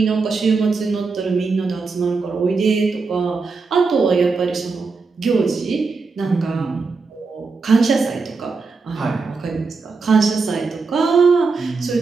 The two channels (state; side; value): quieter; left; 4.4 dB